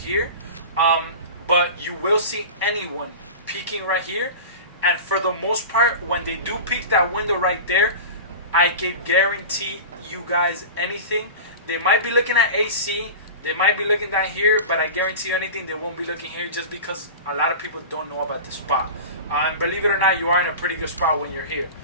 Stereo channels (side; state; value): both; inverted; correlation -0.32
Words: but you will see anyone peeking right here. And for the most part, when they do peek that window right there, I can guarantee you guys anything. They might be looking at AC, they might be looking down here, but I guarantee you anything, they won't be looking here, just because a lot of people don't know about the spot. And believe it or not, you are in a pretty good spot when you're here.